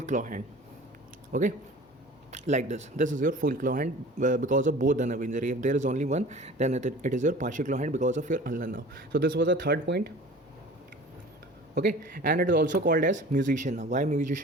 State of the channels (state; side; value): normal; both; correlation 0.43